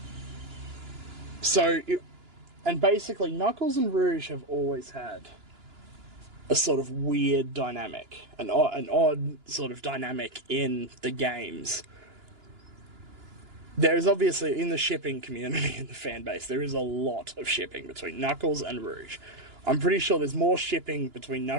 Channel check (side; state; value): left; late; 2.9 ms